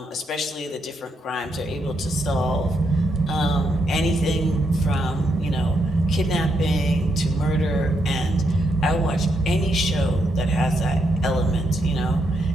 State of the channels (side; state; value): both; normal; correlation 0.78